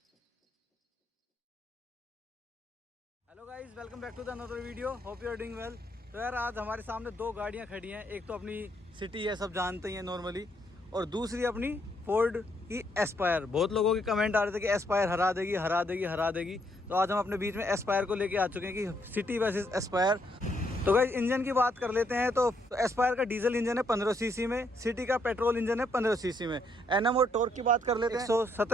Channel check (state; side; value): normal; both; correlation 0.73